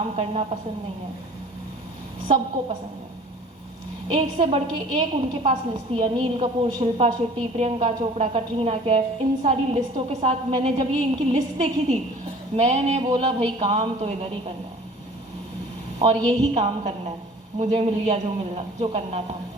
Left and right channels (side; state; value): both; normal; correlation 0.48